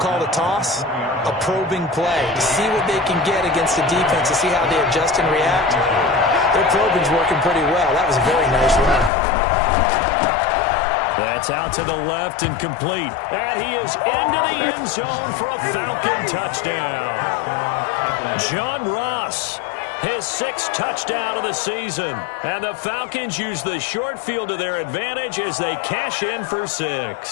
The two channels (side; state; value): right; drops out; at 9.1 s